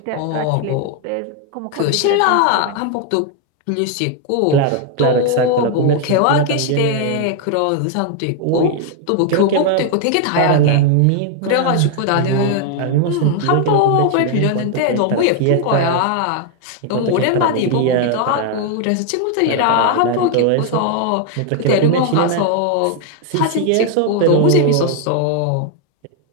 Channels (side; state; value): both; different; correlation 0.00